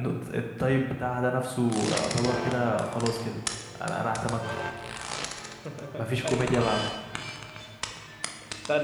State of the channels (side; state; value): both; identical; correlation 1.00